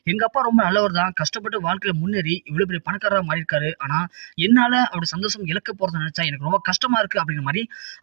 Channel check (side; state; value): left; silent; digital silence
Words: எங்க அப்பா ரொம்ப நல்லவர் தான், கஷ்டப்பட்டு வாழ்க்கையில முன்னேறி இவ்வளவு பெரிய பணக்காரராக மாறியிருக்காரு. ஆனா என்னால அவருடைய சந்தோஷம் இழக்க போறதை நினைச்சா எனக்கு ரொம்ப கஷ்டமா இருக்கு அப்படிங்கிற மாதிரி